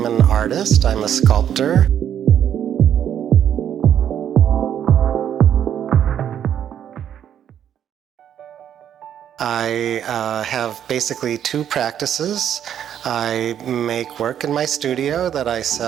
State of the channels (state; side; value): quieter; left; 9.6 dB